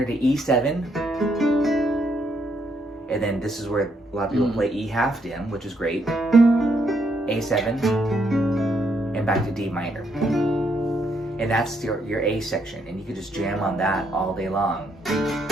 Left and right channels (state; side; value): normal; both; correlation 0.75